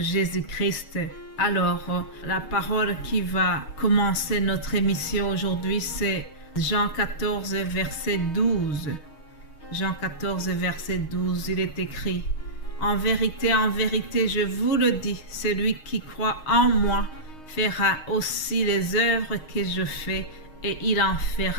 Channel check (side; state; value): right; late; 6.5 ms